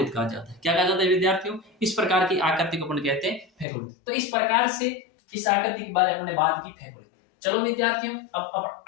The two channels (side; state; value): right; drops out; at 3.7 s